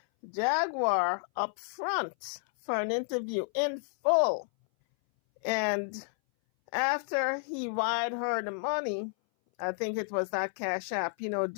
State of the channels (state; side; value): silent; right; 57 dB below the other